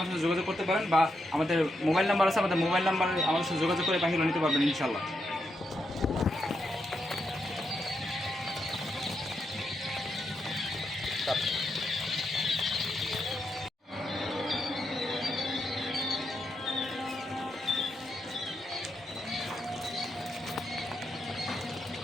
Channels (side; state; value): both; normal; correlation 0.83